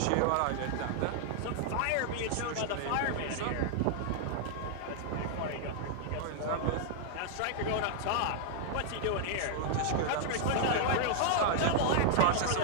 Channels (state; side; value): different; both; correlation -0.01